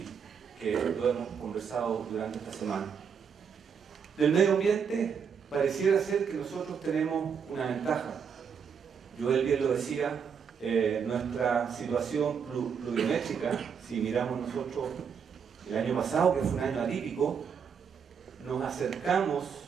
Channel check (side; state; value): left; quieter; 6.8 dB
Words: que lo hemos conversado durante esta semana. Del medio ambiente, pareciera ser que nosotros tenemos una ventaja. Joel bien lo decía, nuestra situación pluviométrica, si miramos nosotros el año pasado, que fue un año atípico, nos acercamos